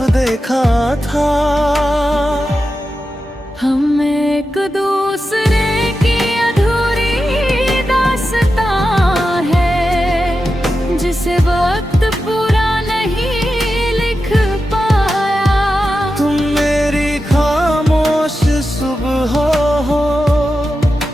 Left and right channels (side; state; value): both; normal; correlation 0.91